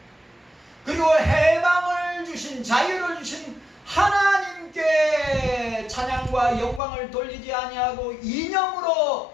그리고 해방을 주신, 자유를 주신 하나님께 찬양과 영광을 돌리지 아니하고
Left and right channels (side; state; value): right; drops out; at 6.8 s